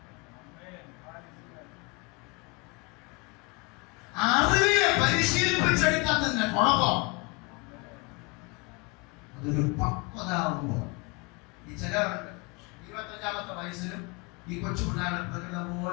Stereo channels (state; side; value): quieter; right; 28.5 dB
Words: അറിവിനെ പരിശീലിപ്പിച്ചെടുക്കാത്തതിന്റെ കുഴപ്പം. അതൊരു പക്വതാവുമ്പോൾ ഈ ചിലവരുണ്ട് 25-ാമത്തെ വയസ്സിലും ഈ കൊച്ചു പിള്ളേരുടെ പ്രകൃതം